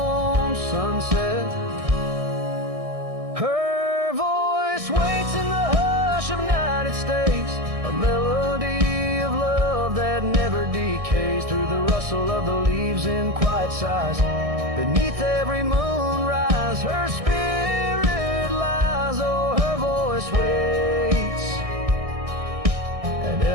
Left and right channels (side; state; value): left; late; 1.6 ms